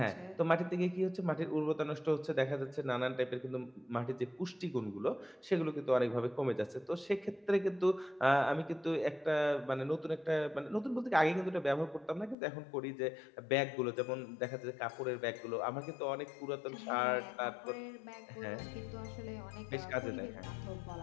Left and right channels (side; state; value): right; drops out; at 12.4 s